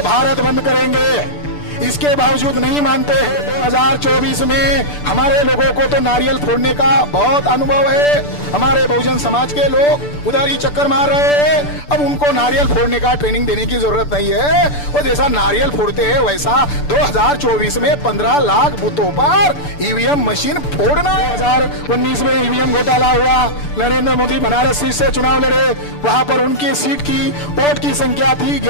भारत बंद करेंगे। इसके बावजूद नहीं मानते हैं। 2024 में हमारे लोगों को तो नारियल फोड़ने का बहुत अनुभव है। हमारे बहुजन समाज के लोग उधर ही चक्कर मार रहे हैं। अब उनको नारियल फोड़ने का ट्रेनिंग देने की जरूरत नहीं है। वो जैसा नारियल फोड़ते हैं वैसा 2024 में 15 लाख बूथों पर ईवीएम मशीन फोड़ना है। 2019 में ईवीएम घोटाला हुआ, नरेंद्र मोदी बनारस सीट से चुनाव लड़े, वहां पर उनकी सीट की वोट की संख्या थी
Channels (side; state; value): right; late; 6.8 ms